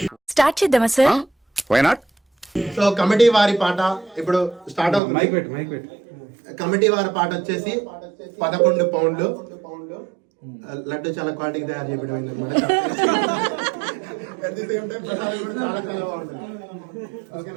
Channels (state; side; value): drops out; left; at 5.0 s